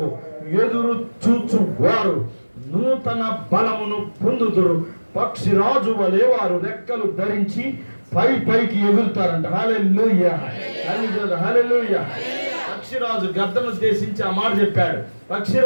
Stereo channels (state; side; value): inverted; both; correlation -1.00